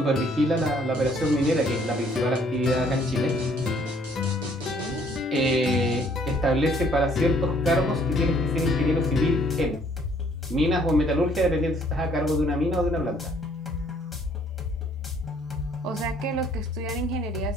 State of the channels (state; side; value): normal; both; correlation 0.62